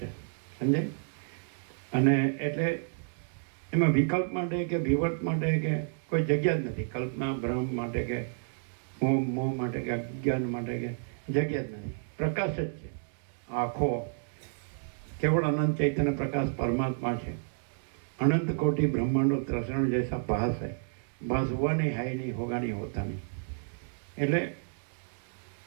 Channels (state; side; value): silent; left; digital silence